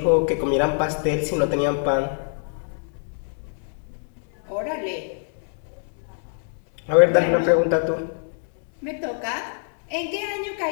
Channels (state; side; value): silent; right; 62 dB below the other